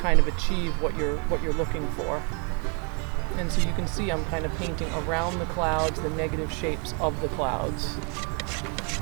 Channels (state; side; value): quieter; left; 36.6 dB